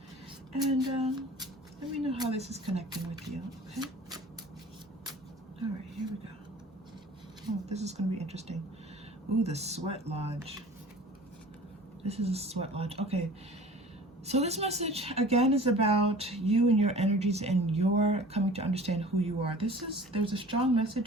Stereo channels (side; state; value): both; normal; correlation 0.44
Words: And let me know how this is connecting with you, okay? All right, here we go. Oh, this is going to be interesting. Ooh, the Sweat Lodge. This is a Sweat Lodge. Okay. So this message, again, is about you and your energies and your coming to understand who you are. There's a strong message